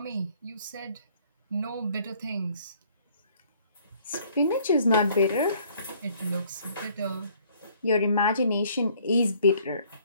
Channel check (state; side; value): inverted; both; correlation -0.60